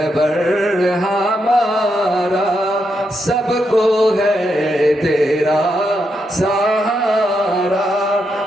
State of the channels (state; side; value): normal; both; correlation 0.82